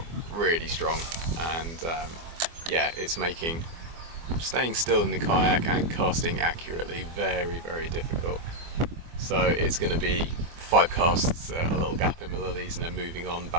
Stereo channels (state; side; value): late; left; 24 ms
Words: really strong, and yeah, it's making staying still in the kayak and casting accurately very, very difficult. So it's going to be 5 casts, a little gap in the lilies, and then moving on